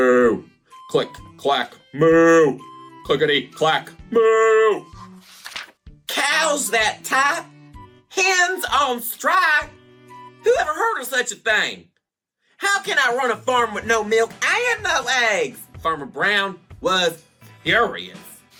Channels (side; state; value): both; identical; correlation 1.00